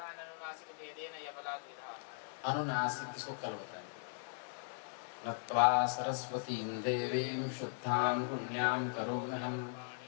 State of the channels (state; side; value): silent; right; 52 dB below the other